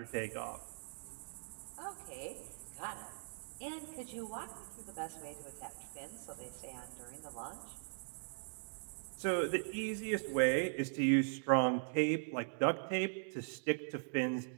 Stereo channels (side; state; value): left; silent; digital silence